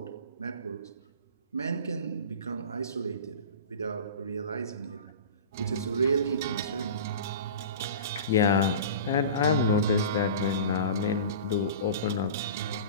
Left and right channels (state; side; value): inverted; both; correlation -0.35